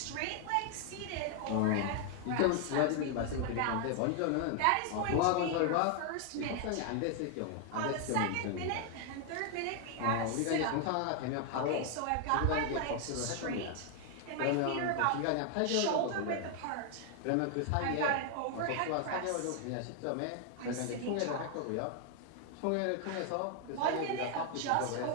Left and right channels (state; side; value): different; both; correlation 0.00